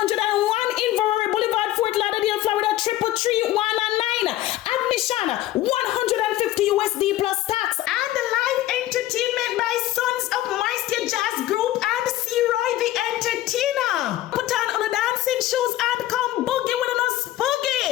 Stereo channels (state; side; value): quieter; right; 15.0 dB